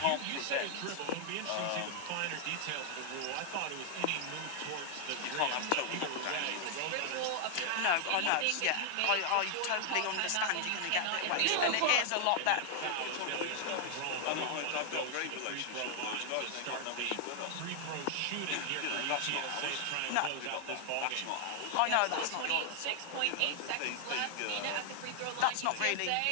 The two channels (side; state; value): both; different; correlation 0.00